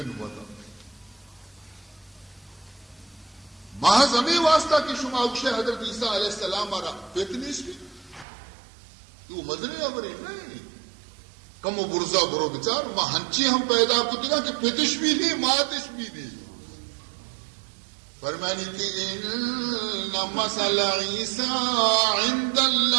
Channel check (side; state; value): left; drops out; at 8.2 s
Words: وطا محض ہمیں واسطہ کی شما اکشے حضرت عیسیٰ علیہ السلام آرہ پیتنیس بھی یہ مدنی عبری نہیں کم و برزا برو بچار ماں ہنچی ہم پیدا کتی نا کہ پیتش بھی نہیں ماتش بھی نہیں، فرمانی کہ ان مثل عیسیٰ عند